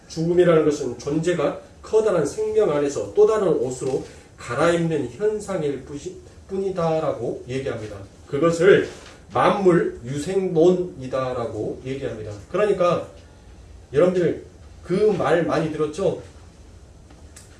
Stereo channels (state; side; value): identical; both; correlation 1.00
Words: 죽음이라는 것은 존재가 커다란 생명 안에서 또 다른 옷으로 갈아입는 현상일 뿐이다라고 얘기합니다. 그것을 만물 유생론이다라고 얘기합니다. 그러니까 여러분들 그 말 많이 들었죠?